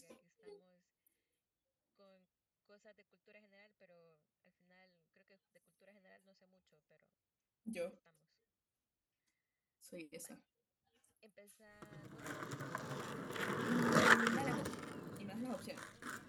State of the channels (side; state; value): both; identical; correlation 1.00